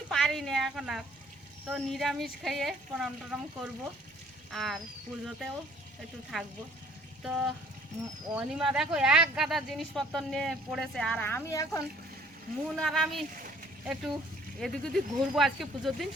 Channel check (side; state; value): both; normal; correlation 0.58